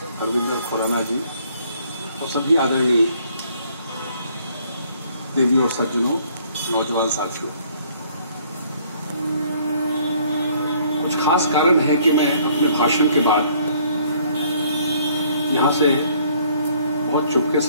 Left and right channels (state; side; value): inverted; both; correlation -0.62